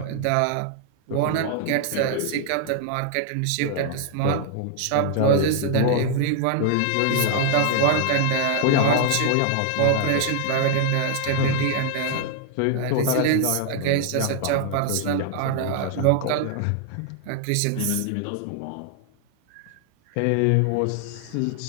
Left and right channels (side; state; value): both; different; correlation 0.00